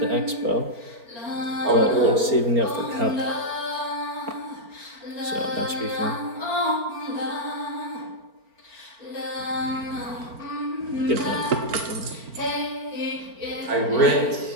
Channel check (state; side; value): late; left; 4.4 ms